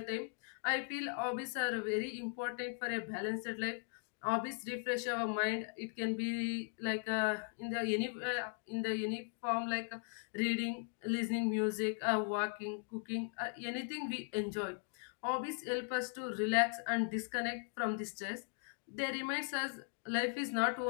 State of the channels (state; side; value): silent; right; 52 dB below the other